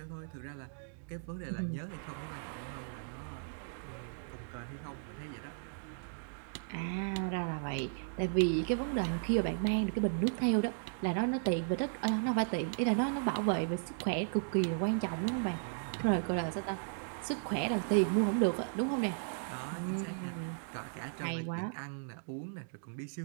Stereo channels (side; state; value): left; silent; digital silence